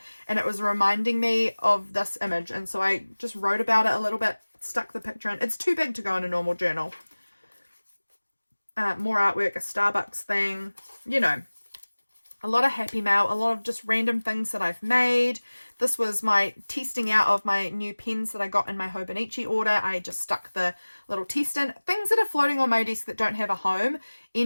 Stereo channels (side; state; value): both; inverted; correlation -1.00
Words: and it was reminding me of this image, and so I just wrote about it a little bit, stuck the picture in. It's too big to go in a normal journal. More artwork, a Starbucks thing, a lot of Happy Mail, a lot of just random things that I've made. This was my testing out of my new pens that I got in my Hobonichi order. I just stuck the little test in. Things that are floating on my desk that don't have a home